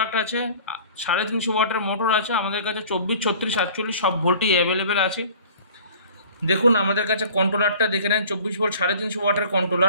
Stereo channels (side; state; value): both; inverted; correlation -0.47